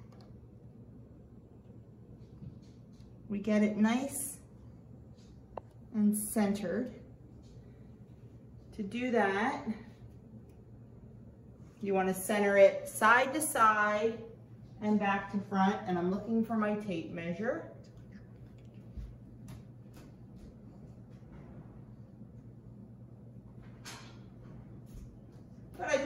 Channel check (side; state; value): both; identical; correlation 1.00